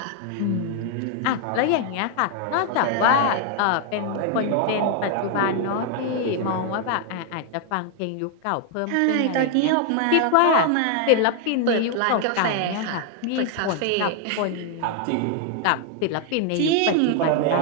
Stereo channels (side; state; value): both; different; correlation 0.00